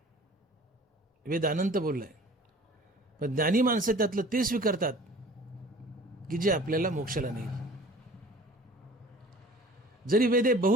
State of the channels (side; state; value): both; normal; correlation 0.46